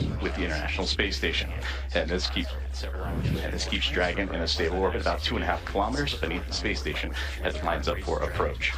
with the International Space Station. And this keeps Dragon in a stable orbit about 2.5 kilometers beneath the space station as it lines up for approach.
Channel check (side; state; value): both; identical; correlation 1.00